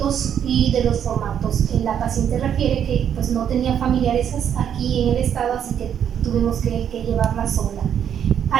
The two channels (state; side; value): quieter; left; 8.9 dB